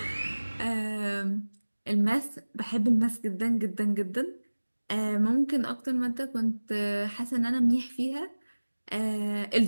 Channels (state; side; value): inverted; both; correlation -1.00